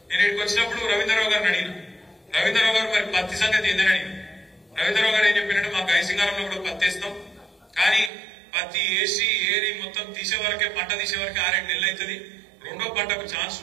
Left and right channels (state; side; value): drops out; left; at 8.1 s